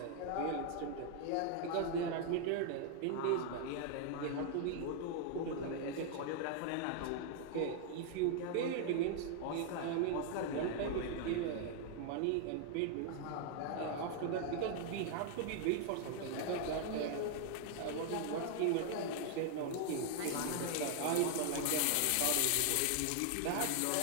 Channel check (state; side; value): different; both; correlation 0.00